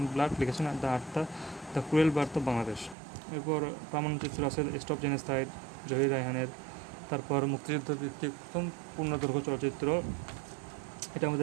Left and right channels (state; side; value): drops out; left; at 3.0 s